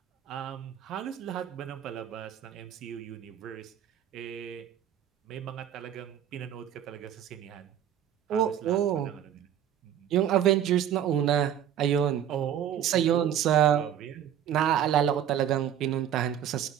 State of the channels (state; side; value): quieter; left; 10.1 dB